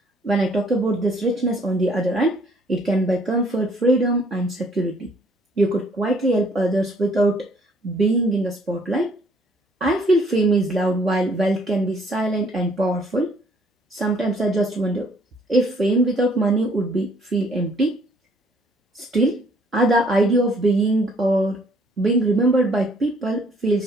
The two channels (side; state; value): both; normal; correlation 0.62